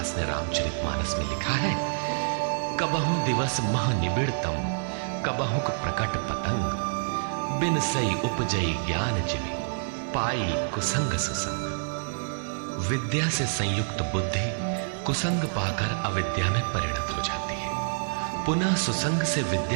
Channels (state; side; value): silent; left; digital silence